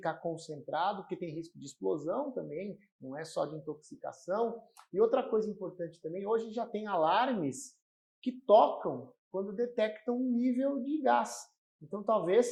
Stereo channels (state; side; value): identical; both; correlation 1.00